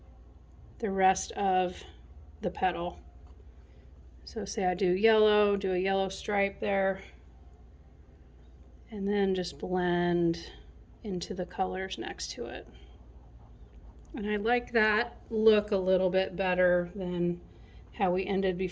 the rest of the petal. So say I do a yellow stripe there, and then just blend into the colors next to it. And I like that look a little bit better than how we ended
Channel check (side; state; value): both; identical; correlation 1.00